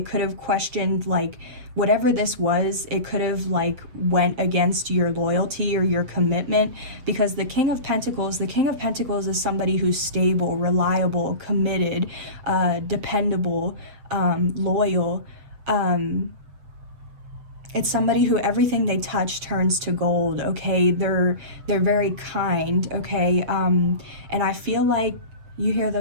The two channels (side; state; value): left; late; 7.7 ms